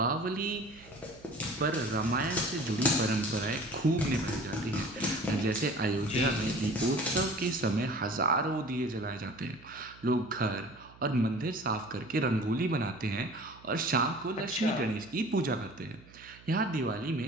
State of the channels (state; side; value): noise; right; hum, 23 dB below the sound